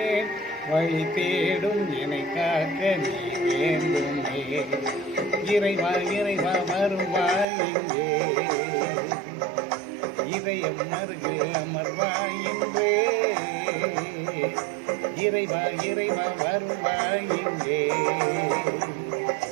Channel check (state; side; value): drops out; left; at 7.5 s